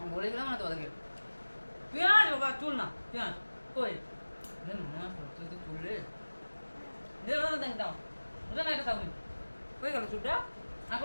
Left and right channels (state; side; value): inverted; both; correlation -1.00